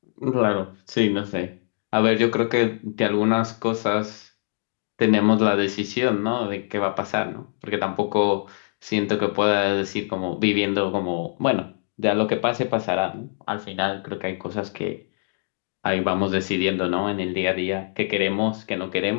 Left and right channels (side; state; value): right; silent; digital silence